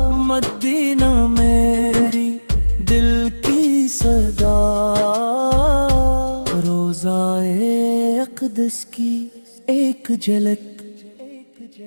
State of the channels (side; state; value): both; inverted; correlation -1.00